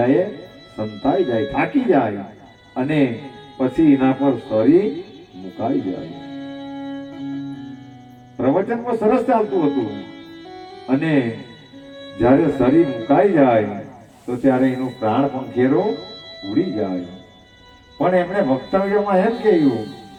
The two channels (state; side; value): identical; both; correlation 1.00